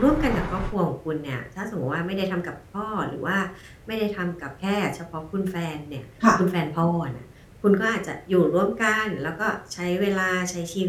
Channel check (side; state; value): both; identical; correlation 1.00